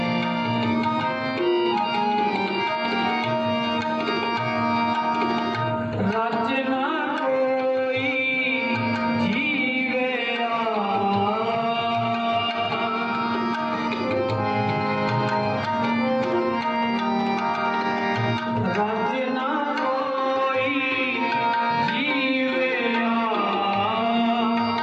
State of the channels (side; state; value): both; identical; correlation 1.00